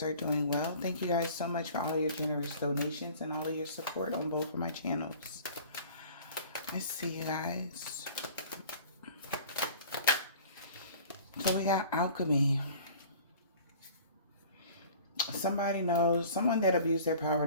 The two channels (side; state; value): both; inverted; correlation -0.46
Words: are doing well. Thank you guys so much for all your generous donations and all of your support on both of my channels. Let's see, you guys. So we got alchemy. Somebody knows, someone that abused their